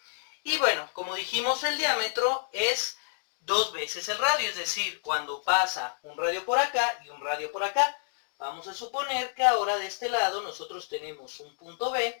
Y bueno, como dijimos, el diámetro es dos veces el radio, es decir, cuando pasa un radio por acá y un radio por acá. Vamos a suponer que ahora de este lado nosotros tenemos un punto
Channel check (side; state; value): right; silent; digital silence